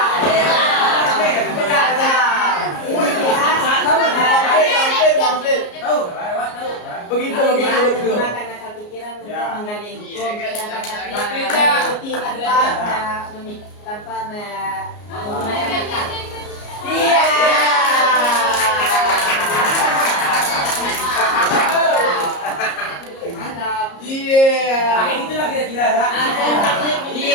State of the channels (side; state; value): right; late; 34 ms